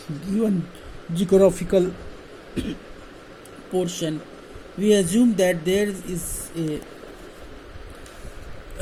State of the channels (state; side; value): identical; both; correlation 1.00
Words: given geographical portion? We assume that there is